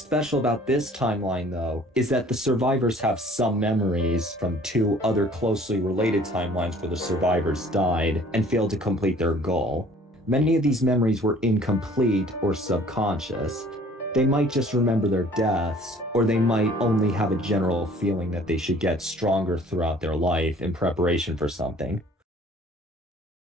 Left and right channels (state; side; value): normal; both; correlation 0.53